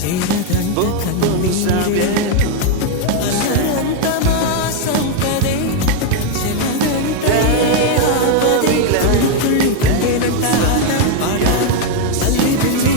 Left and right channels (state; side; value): different; both; correlation 0.01